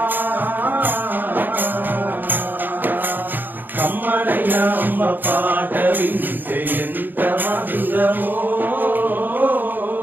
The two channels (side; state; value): left; late; 0.090 ms